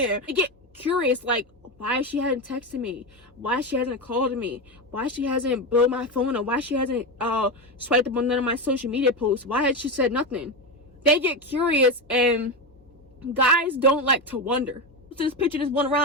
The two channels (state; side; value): normal; both; correlation 0.15